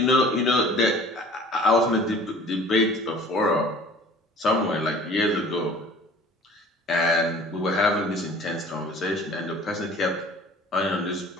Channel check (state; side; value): normal; both; correlation 0.47